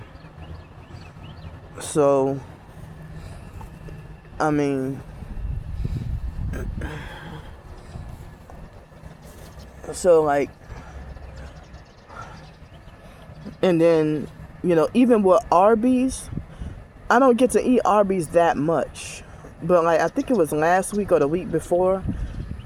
So, I mean, and then, even with Arby's, I don't get to eat Arby's that much. But I think it was last week or the week before,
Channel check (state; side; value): identical; both; correlation 1.00